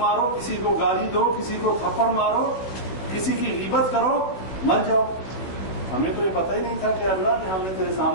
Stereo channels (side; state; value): right; late; 16 ms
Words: کسی کو گالی دو، کسی کو تھپڑ مارو، کسی کی غیبت کرو، مر جاؤ۔ ہمیں تو یہ پتہ ہی نہیں تھا کہ اللہ کہ ہم نے تیرے